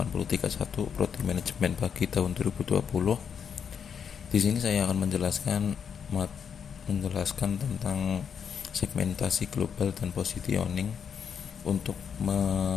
Prodi Manajemen Pagi tahun 2020. Di sini saya akan menjelaskan tentang segmentasi global dan positioning untuk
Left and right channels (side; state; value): right; quieter; 7.3 dB